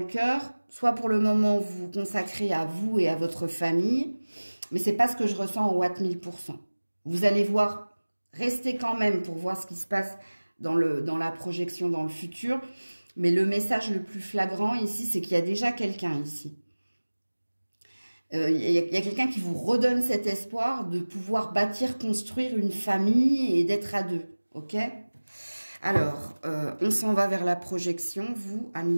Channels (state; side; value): inverted; both; correlation -1.00